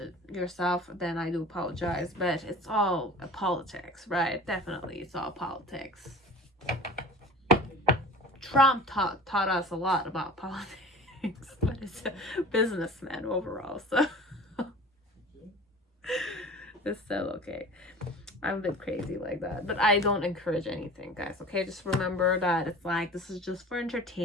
yourself, then I do apologize, but it's all politics, right? Definitely, it's all politics. Trump taught us a lot about politics, but it's a businessman overall, so it's still okay. I'm a bit crazy like that, but I don't encourage anything, guys, okay? Just remember that it's like, this is just for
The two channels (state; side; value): normal; both; correlation 0.41